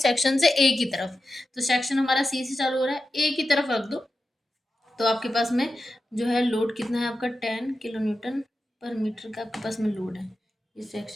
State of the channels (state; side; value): normal; both; correlation 0.91